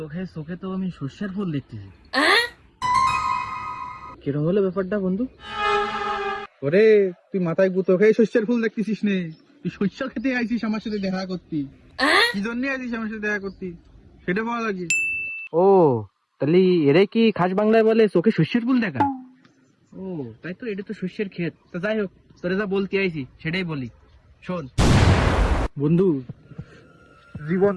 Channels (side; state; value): both; identical; correlation 1.00